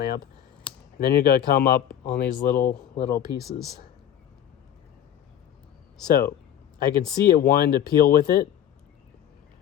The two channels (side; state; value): right; quieter; 10.4 dB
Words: And then you're going to come up on these little pieces. So I can see it wanting to peel with it.